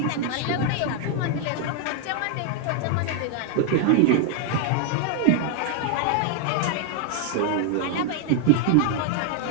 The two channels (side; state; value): both; different; correlation 0.00